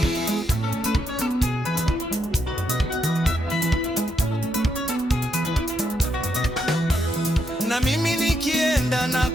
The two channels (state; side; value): normal; both; correlation 0.78